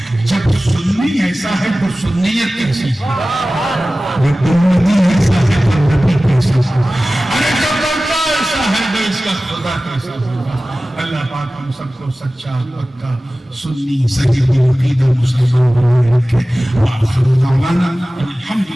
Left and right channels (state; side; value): normal; both; correlation 0.97